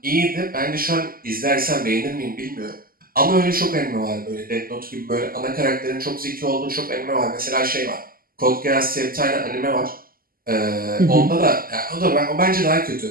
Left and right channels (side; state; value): left; late; 0.42 ms